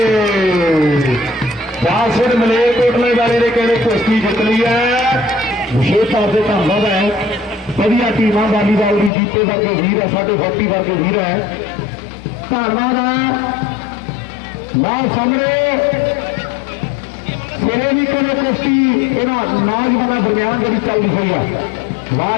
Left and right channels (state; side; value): drops out; right; at 9.1 s